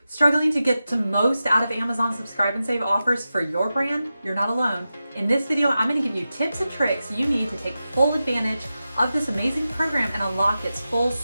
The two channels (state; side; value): inverted; both; correlation -0.92